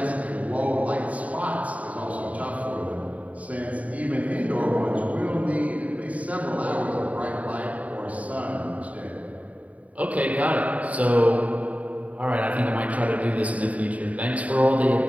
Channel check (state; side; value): late; left; 0.069 ms